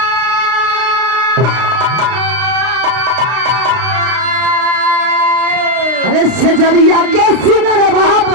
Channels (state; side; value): late; left; 32 ms